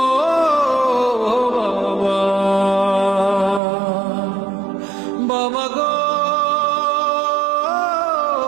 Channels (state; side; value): drops out; left; at 3.6 s